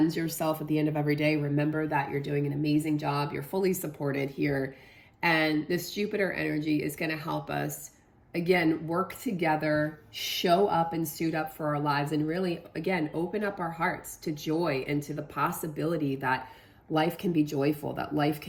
yourself at the end of every day. Remember that you're doing an amazing job. You're fully supported here. And this Jupiter energy is going to help us, again, work together, show up and suit up for our lives, and really, again, open up our hearts to joy and to the possibility that life can be joyful, that life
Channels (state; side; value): identical; both; correlation 1.00